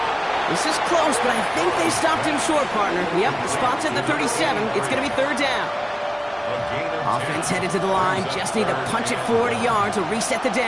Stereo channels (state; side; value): identical; both; correlation 1.00